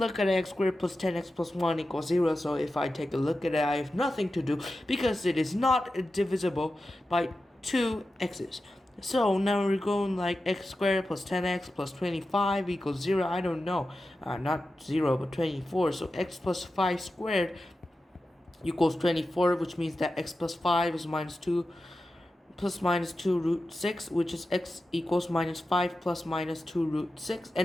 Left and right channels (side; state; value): both; normal; correlation 0.92